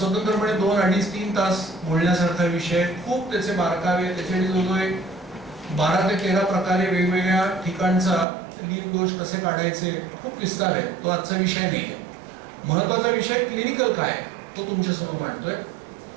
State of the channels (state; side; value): drops out; left; at 8.2 s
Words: 2, 2.5, 3 तास बोलण्यासारखा विषय. खूप त्याचे बारकावे, त्याचे जवळजवळ 12 ते 13 प्रकारे वेगवेगळ्या ठिकाणचा लीन दोष कसे काढायचे, खूप विस्तार आहे. तो आजचा विषय नाही आहे. महत्वाचा विषय क्लिनिकल काय तो तुमच्यासमोर मांडतोय